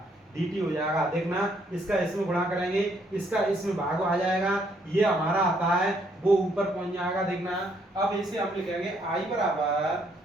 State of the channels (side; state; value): both; normal; correlation 0.70